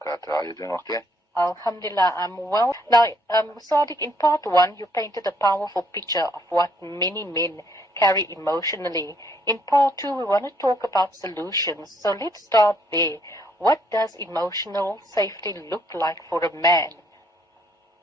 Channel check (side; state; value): both; normal; correlation 0.68